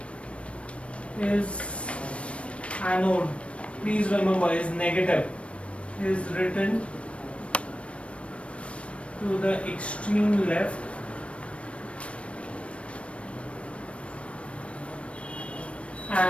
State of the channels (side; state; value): right; late; 0.061 ms